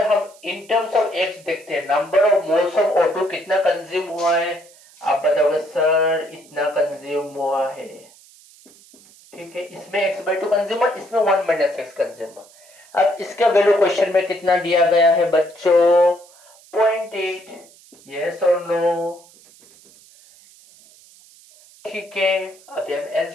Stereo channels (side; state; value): right; noise; hiss, 25 dB below the sound